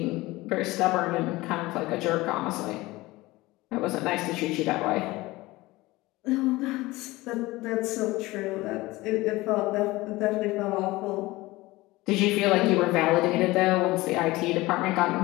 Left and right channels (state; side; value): quieter; right; 20.0 dB